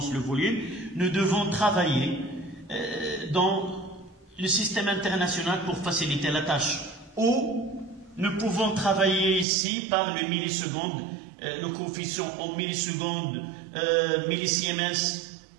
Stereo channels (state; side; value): drops out; left; at 9.5 s